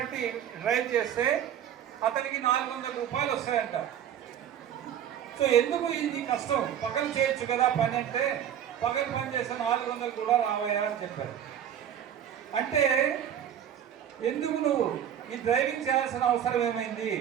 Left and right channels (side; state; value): left; quieter; 9.7 dB